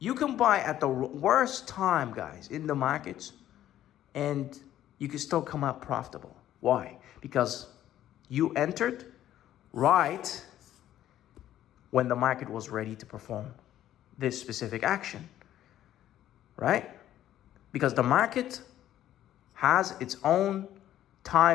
You can buy at the worst time, guys, in the markets, and you can still come out profitable. Why? Because you entered right when the market was ready to perform this specific action, right? Because the market has its own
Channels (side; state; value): right; quieter; 12.3 dB